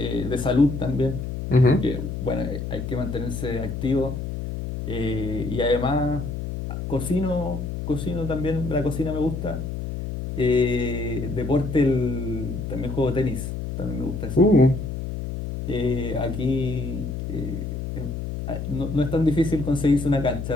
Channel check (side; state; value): left; noise; hum, 5 dB below the sound